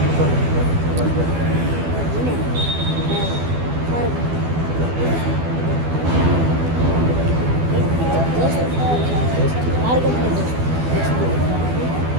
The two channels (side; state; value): left; late; 12 ms